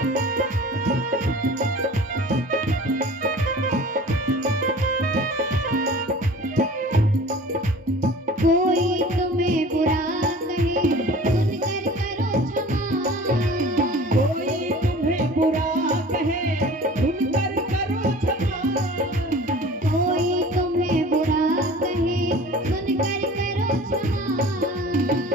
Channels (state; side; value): normal; both; correlation 0.43